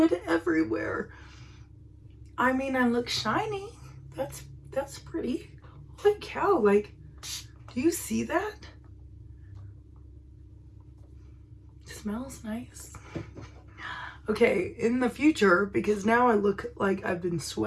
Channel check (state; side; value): identical; both; correlation 1.00